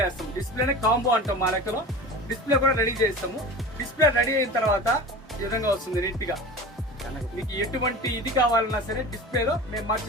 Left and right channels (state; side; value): normal; both; correlation 0.34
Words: చేస్తాం. డిస్ప్లేనే కాంబో అంటాం మా లెక్కలో. డిస్ప్లే కూడా రెడీ చేస్తాము. డిస్ప్లే రెడీ అయిన తర్వాత ఈ విధంగా వస్తుంది నీట్ గా. మీకు ఎటువంటి ఇది కావాలన్నా సరే డిస్ప్లేలో మేము